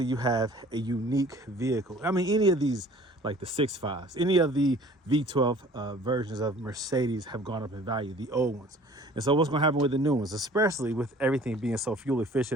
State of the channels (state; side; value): normal; both; correlation 0.50